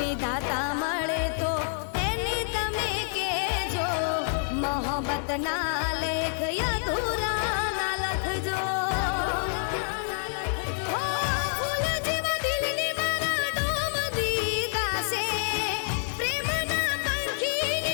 મળે તો એને તમે કહેજો, મોહબ્બતના લેખ અધૂરા ના લખજો. હો ફૂલ જેવા દિલની મારા ડોમ દીધા છે, પ્રેમના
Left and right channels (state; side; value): silent; right; 60 dB below the other